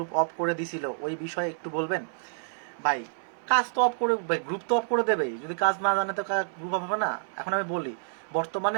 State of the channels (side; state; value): left; silent; 59 dB below the other